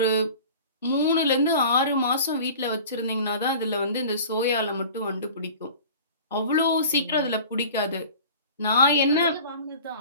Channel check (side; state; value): both; inverted; correlation -0.41